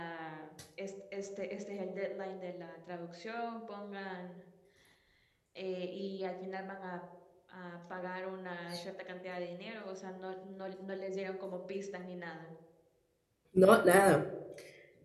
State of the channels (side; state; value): both; identical; correlation 1.00